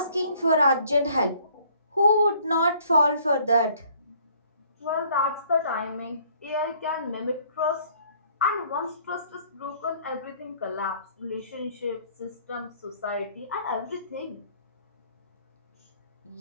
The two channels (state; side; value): inverted; both; correlation -0.60